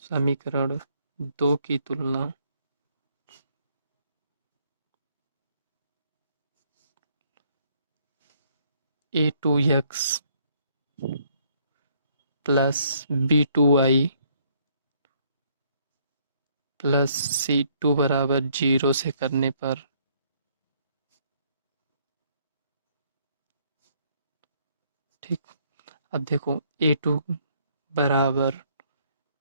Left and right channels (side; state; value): both; inverted; correlation -0.67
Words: समीकरण दो की तुलना a2x plus b2y plus c2 बराबर 0 से करने पर, ठीक अब देखो a2 बराबर